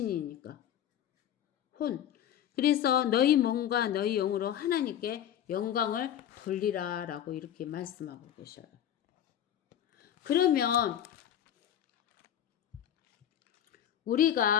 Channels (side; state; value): right; quieter; 10.4 dB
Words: 그래서 너희 몸과 너희 영으로 하나님께 영광을 돌리라 라고 이렇게 말씀하고 계셔요. 그러면